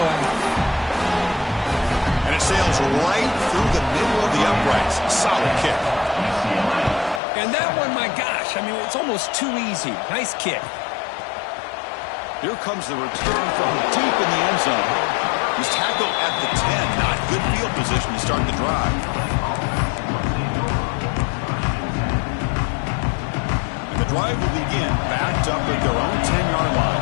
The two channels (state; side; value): drops out; right; at 7.2 s